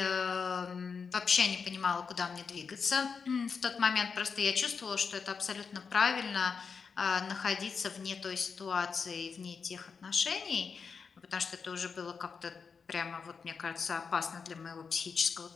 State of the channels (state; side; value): quieter; right; 5.6 dB